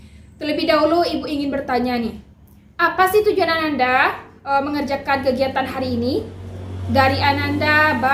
terlebih dahulu Ibu ingin bertanya nih. Apa sih tujuan Ananda mengerjakan kegiatan hari ini? Dari Ananda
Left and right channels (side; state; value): both; identical; correlation 1.00